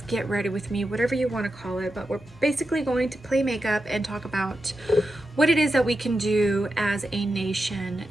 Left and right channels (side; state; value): both; normal; correlation 0.89